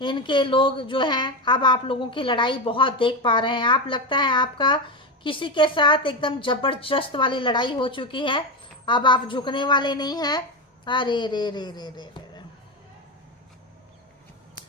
लोग जो हैं, अब आप लोगों की लड़ाई बहुत देख पा रहे हैं। आप लगता है आपका किसी के साथ एकदम जबरदस्त वाली लड़ाई हो चुकी है, अब आप झुकने वाले नहीं हैं। अरे रे रे रे रे रे,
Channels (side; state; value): both; normal; correlation 0.15